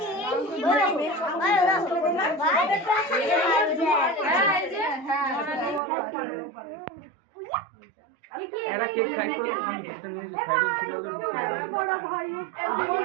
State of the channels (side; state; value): left; drops out; at 5.8 s